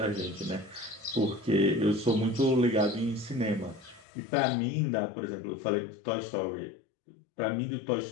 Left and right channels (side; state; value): right; drops out; at 4.0 s